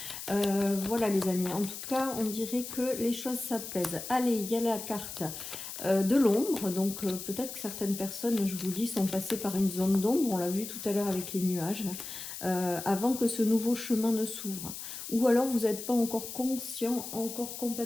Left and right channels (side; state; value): left; noise; hiss, 9 dB below the sound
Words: Voilà les amis, en tout cas on dirait que les choses s'apaisent. Allez, il y a la carte de l'ombre, donc peut-être que certaines personnes, je vous dis, sont passées par une zone d'ombre, on l'a vu tout à l'heure avec les nuages, avant que ce nouveau chemin ne s'ouvre. Ou alors vous n'êtes pas encore conscient, encore